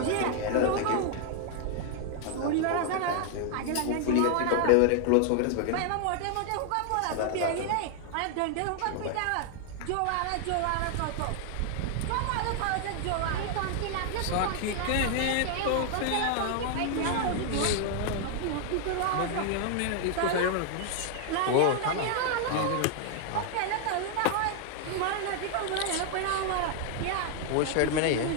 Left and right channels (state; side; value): different; both; correlation 0.00